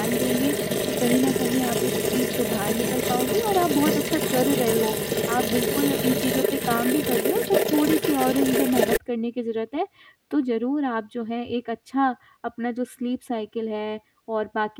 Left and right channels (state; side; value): identical; both; correlation 1.00